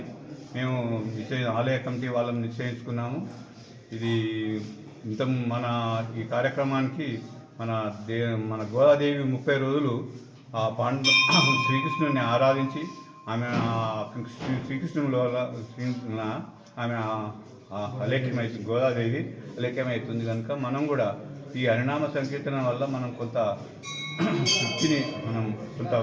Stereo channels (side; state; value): both; identical; correlation 1.00